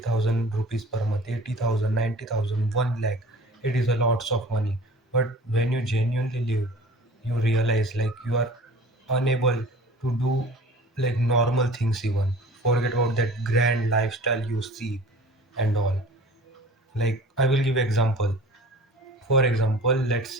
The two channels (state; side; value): normal; both; correlation 0.44